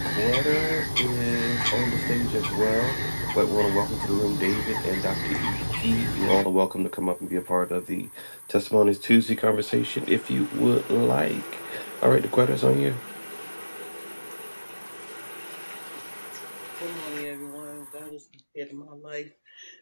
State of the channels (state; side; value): inverted; both; correlation -1.00